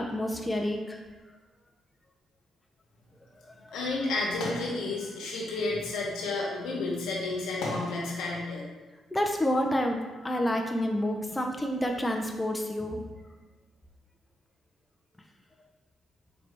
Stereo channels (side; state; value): both; normal; correlation 0.82